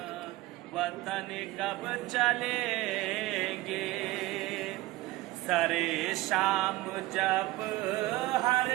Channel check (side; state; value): left; quieter; 18.6 dB